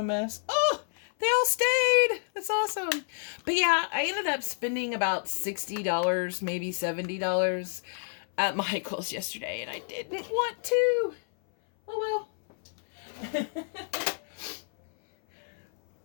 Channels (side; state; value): right; silent; 59 dB below the other